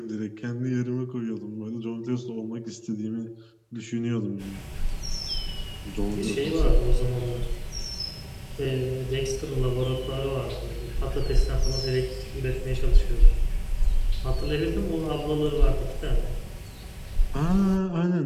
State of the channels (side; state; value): both; identical; correlation 1.00